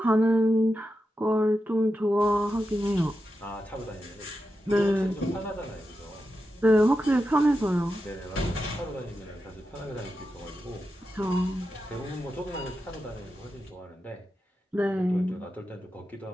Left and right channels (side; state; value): both; normal; correlation 0.89